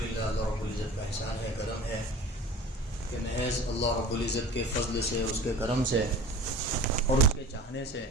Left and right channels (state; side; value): normal; both; correlation 0.40